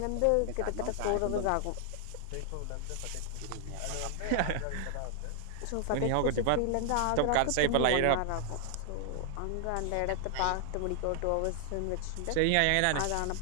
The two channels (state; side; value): different; both; correlation 0.00